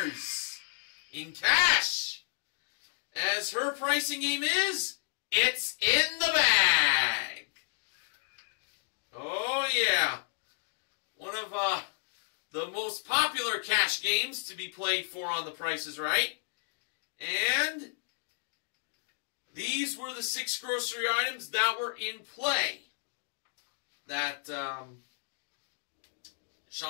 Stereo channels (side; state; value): right; silent; digital silence